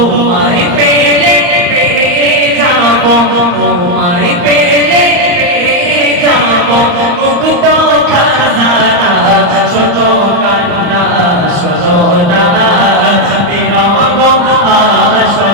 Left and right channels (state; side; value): late; left; 34 ms